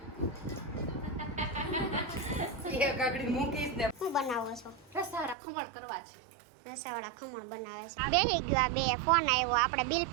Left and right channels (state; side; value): drops out; left; at 5.4 s